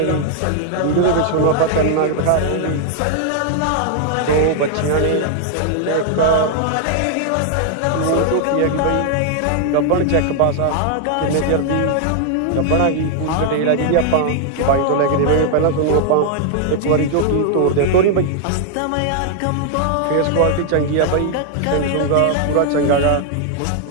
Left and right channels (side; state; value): both; different; correlation 0.00